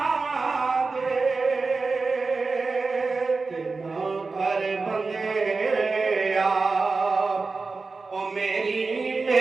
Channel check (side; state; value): left; quieter; 4.1 dB